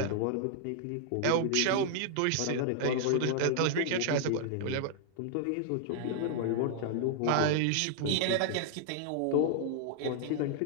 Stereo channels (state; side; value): different; both; correlation -0.01